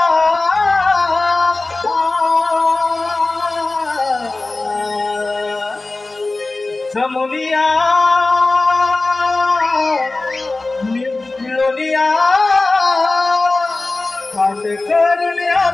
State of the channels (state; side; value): quieter; right; 3.2 dB